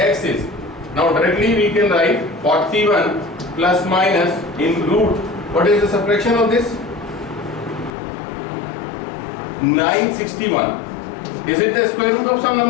is, now directly we can write 41 plus minus in root. What is the subtraction of this? 961. Is it the square root of some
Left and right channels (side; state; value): right; drops out; at 7.9 s